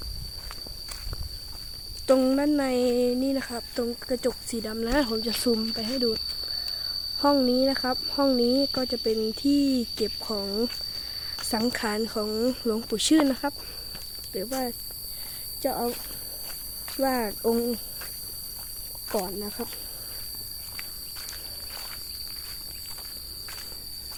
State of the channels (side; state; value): both; identical; correlation 1.00